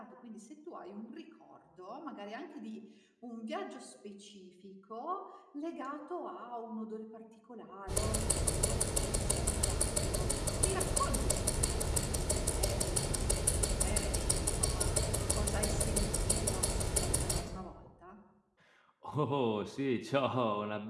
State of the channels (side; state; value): both; identical; correlation 1.00